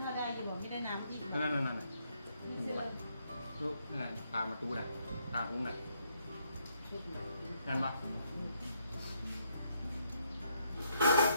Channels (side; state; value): both; inverted; correlation -0.74